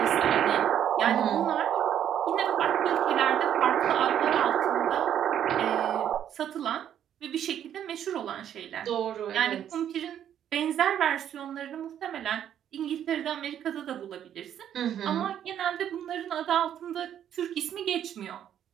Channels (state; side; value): quieter; left; 10.0 dB